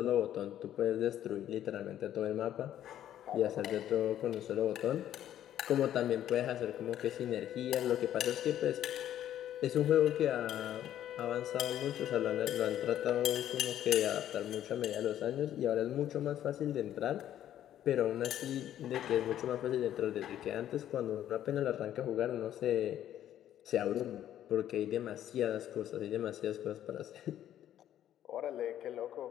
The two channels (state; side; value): quieter; right; 11.4 dB